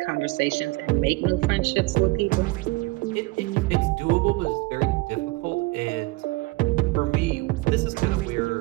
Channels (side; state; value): left; quieter; 22.6 dB